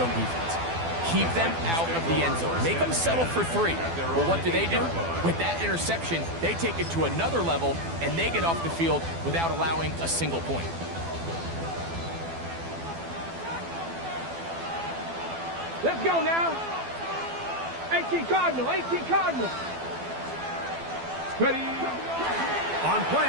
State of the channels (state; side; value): late; left; 12 ms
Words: defense. Keep them out of the end zone. Make them settle for 3. Well, what do? With that interception, they take it to another level, and they get off the field without allowing a single point. Let's go now. 18 Cardinal, 18 Cardinal. Ready. On play